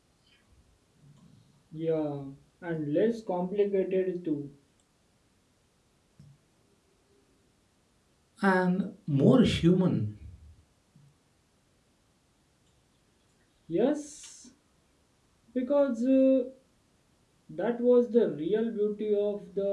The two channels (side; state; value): both; identical; correlation 1.00